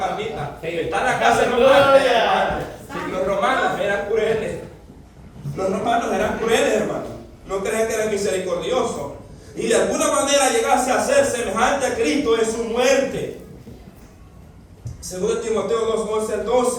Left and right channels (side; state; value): both; identical; correlation 1.00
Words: Estar en la cárcel romana. Los romanos eran crueles. Los romanos eran crueles, hermano. No crean que eran misericordiosos. y de alguna manera llegase a ser semejante a Cristo en su muerte. 2 Timoteo 2, 11 al